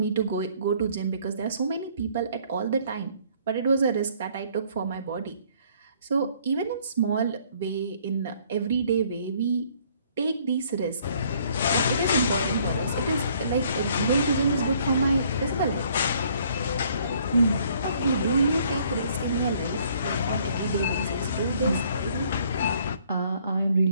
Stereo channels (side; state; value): both; inverted; correlation -0.61